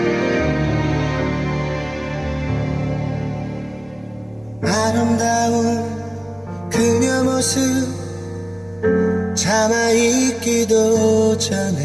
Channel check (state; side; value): noise; right; hum, 29 dB below the sound